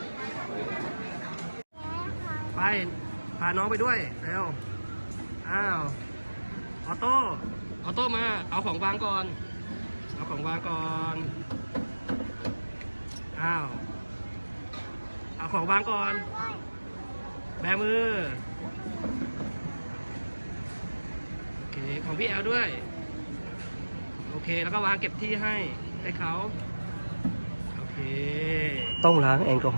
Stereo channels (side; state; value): both; inverted; correlation -1.00